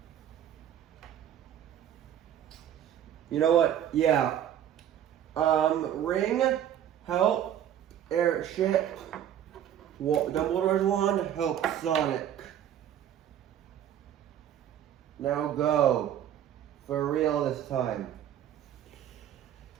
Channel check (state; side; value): quieter; left; 10.4 dB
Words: You know what? Yeah. Ring, help, Airship, Dumbledore's wand, help, Sonic. Now go. For real this time.